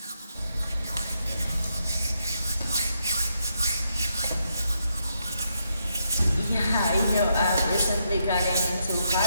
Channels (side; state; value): both; inverted; correlation -0.79